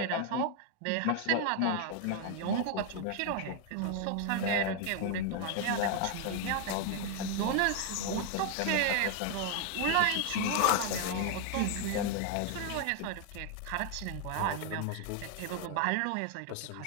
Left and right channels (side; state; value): both; different; correlation 0.00